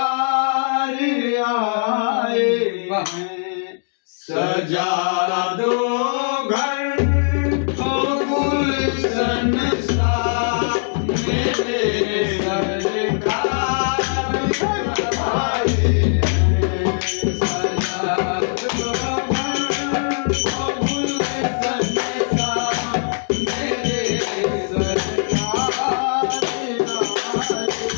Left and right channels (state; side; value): silent; right; digital silence